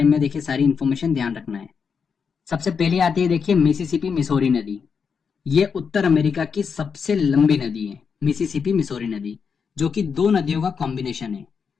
में देखिए सारी इन्फॉर्मेशन ध्यान रखना है। सबसे पहले आती है देखिए मिसिसिपी मिसौरी नदी। ये उत्तर अमेरिका की सबसे लंबी नदी है, मिसिसिपी मिसौरी नदी, जो कि दो नदियों का कॉम्बिनेशन है,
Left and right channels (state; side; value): quieter; right; 6.1 dB